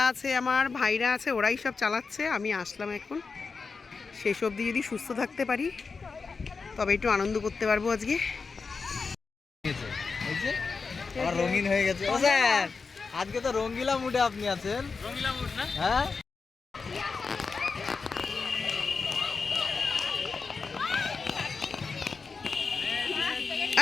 আছে, আমার ভাইরা আছে, ওরাই সব চালাচ্ছে। আমি আসলাম এখন। শেষ অবধি যদি সুস্থ থাকতে পারি তবে একটু আনন্দ করতে পারবো আজকে। রঙিন হয়ে গেছে। ও স্যার, আজকে তো রঙ্গিলা মুডে আপনি আছেন। রঙ্গিলা মুড না? হ্যাঁ।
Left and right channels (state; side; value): quieter; right; 4.7 dB